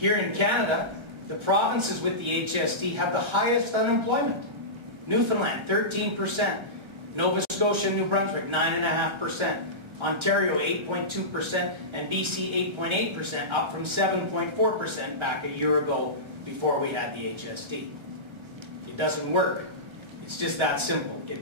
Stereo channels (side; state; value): left; late; 1.3 ms